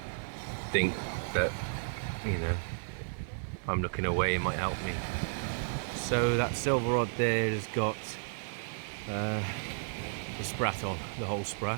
think that, you know, if I'm looking away, it might help me. So that silver rod there has got the sprat on, the whole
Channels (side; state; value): left; silent; digital silence